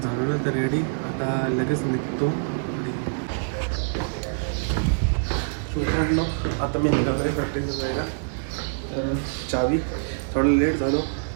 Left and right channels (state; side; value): silent; left; digital silence